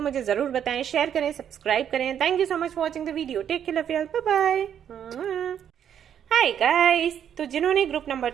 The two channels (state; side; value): quieter; left; 9.1 dB